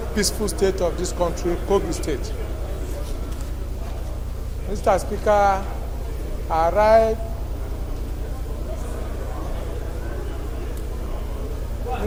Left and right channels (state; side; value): identical; both; correlation 1.00